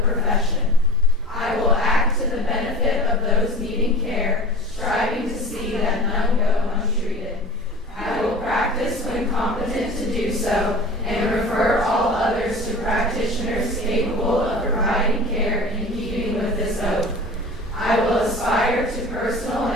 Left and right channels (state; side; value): normal; both; correlation 0.37